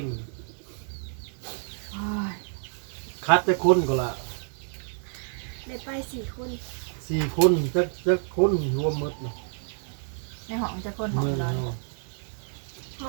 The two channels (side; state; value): left; silent; digital silence